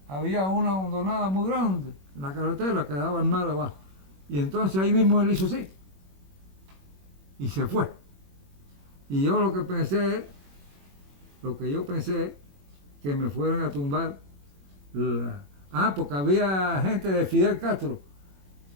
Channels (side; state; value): left; late; 21 ms